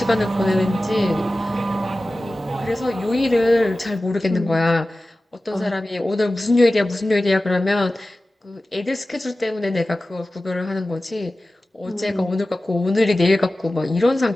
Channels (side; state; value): both; normal; correlation 0.96